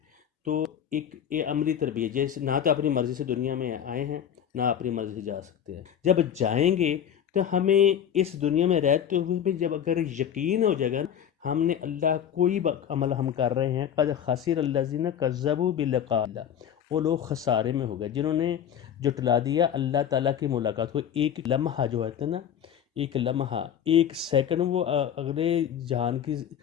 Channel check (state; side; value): quieter; right; 9.2 dB